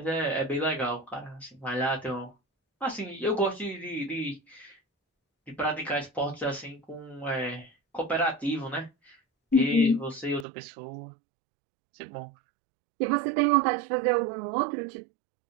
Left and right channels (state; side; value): drops out; left; at 10.5 s